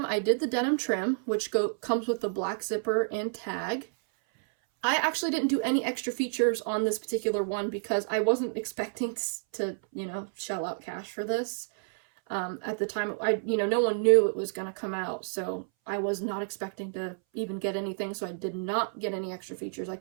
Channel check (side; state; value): left; silent; 58 dB below the other